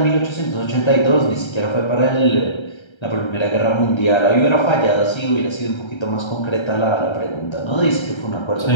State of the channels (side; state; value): right; late; 1.3 ms